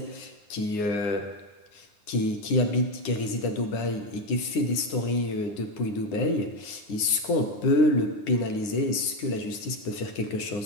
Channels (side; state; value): right; late; 9.7 ms